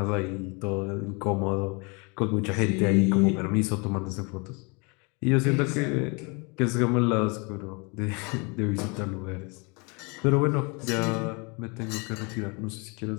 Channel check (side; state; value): right; quieter; 30.8 dB